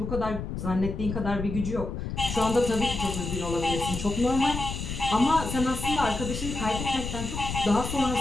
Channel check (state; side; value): noise; left; rumble, 5 dB below the sound